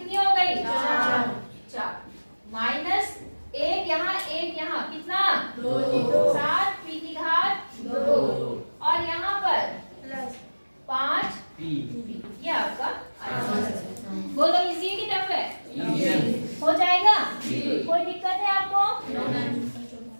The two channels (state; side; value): inverted; both; correlation -1.00